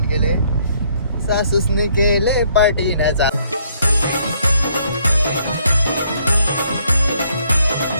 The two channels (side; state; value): both; inverted; correlation -0.67